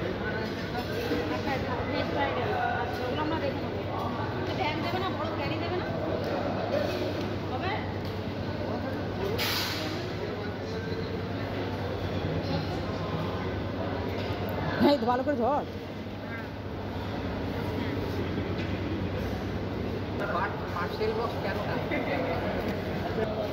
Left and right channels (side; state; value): both; identical; correlation 1.00